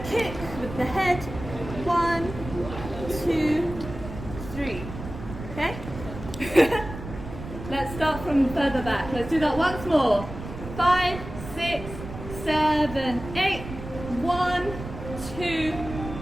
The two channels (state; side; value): noise; right; rumble, 10 dB below the sound